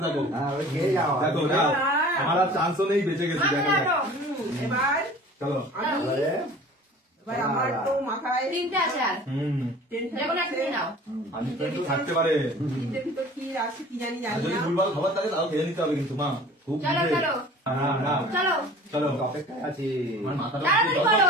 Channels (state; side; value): normal; both; correlation 0.45